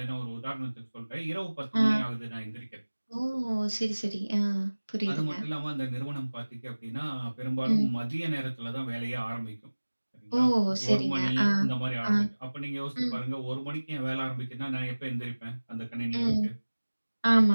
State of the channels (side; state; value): both; inverted; correlation -1.00